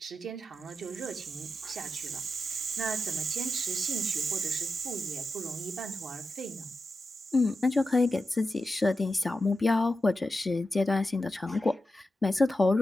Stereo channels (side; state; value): both; normal; correlation 0.90